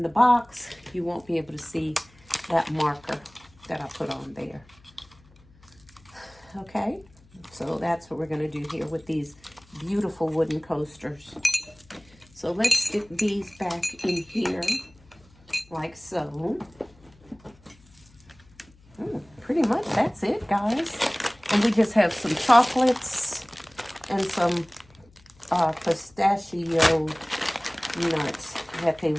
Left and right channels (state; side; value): noise; left; hum, 28 dB below the sound